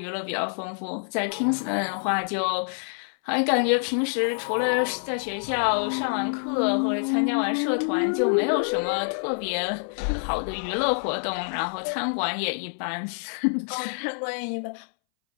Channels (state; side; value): silent; right; 61 dB below the other